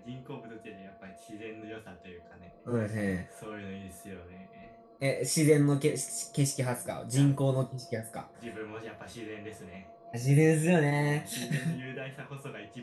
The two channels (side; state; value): both; identical; correlation 1.00